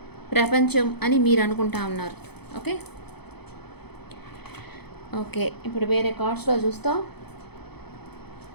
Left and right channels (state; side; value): late; right; 0.98 ms